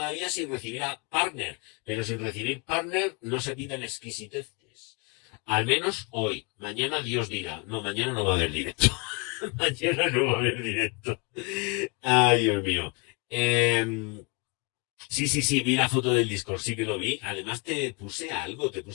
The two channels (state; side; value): quieter; right; 31.2 dB